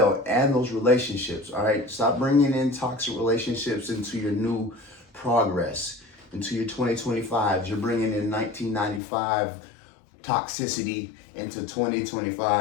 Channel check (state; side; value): drops out; right; at 9.0 s